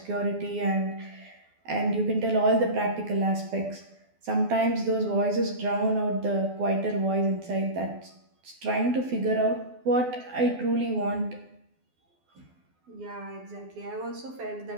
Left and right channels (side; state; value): left; late; 12 ms